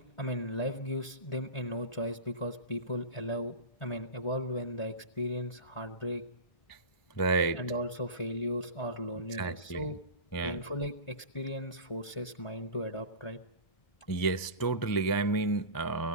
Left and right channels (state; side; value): late; right; 1.0 ms